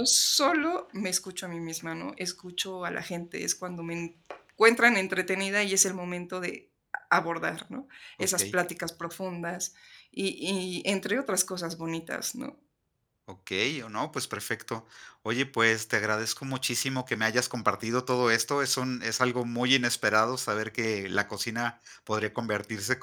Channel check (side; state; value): both; identical; correlation 1.00